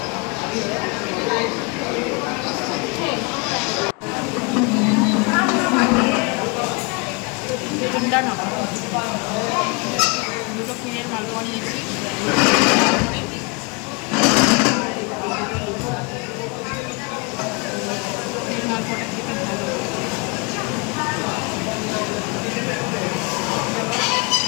ঠান্ডা না, দুটো ক্ষীরের মালপোয়া নিয়েছি। ক্ষীরের মালপোয়াটা খেতে ভালো।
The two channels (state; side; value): quieter; right; 30.2 dB